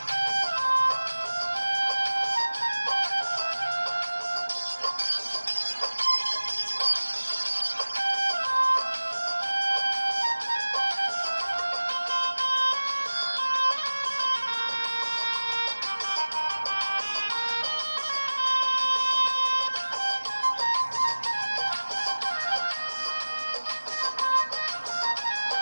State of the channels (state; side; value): inverted; both; correlation -1.00